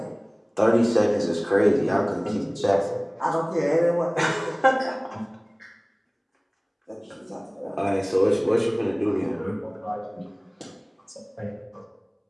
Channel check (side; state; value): both; identical; correlation 1.00